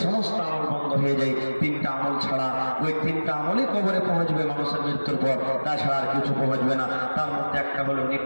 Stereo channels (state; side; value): inverted; both; correlation -1.00